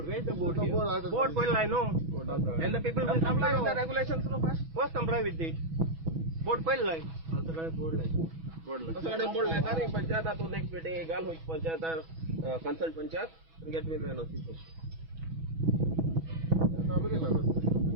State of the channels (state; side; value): late; left; 6.1 ms